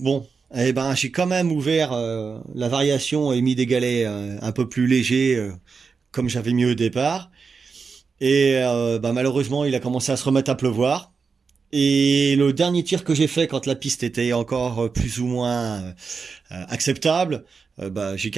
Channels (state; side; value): quieter; left; 5.2 dB